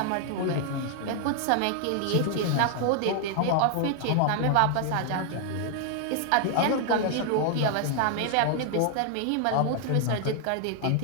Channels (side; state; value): both; different; correlation 0.00